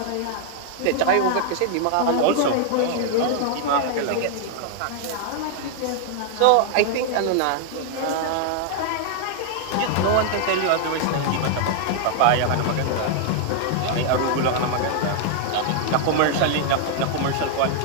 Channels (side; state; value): both; different; correlation 0.00